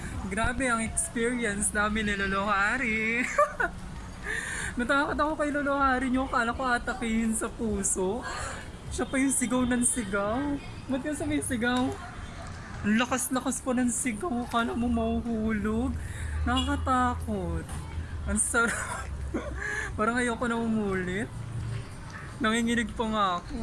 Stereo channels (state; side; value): identical; both; correlation 1.00